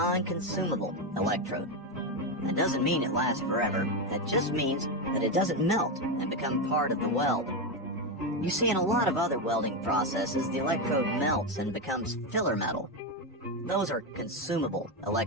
electrode. That doesn't mean it lasts forever. That just means that it doesn't melt and become part of the weld. You see, in a lot of other welding processes, the electrode melts and becomes filler metal. Those are consumable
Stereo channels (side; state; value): both; normal; correlation 0.10